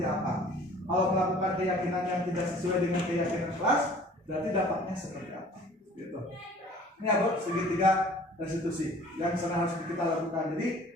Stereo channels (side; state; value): both; normal; correlation 0.50